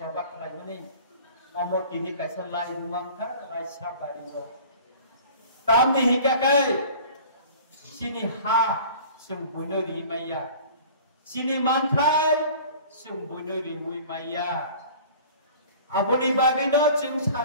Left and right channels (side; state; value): both; inverted; correlation -0.44